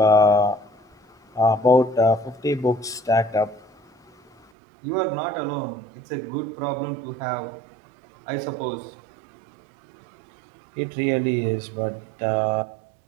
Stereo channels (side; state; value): left; drops out; at 4.5 s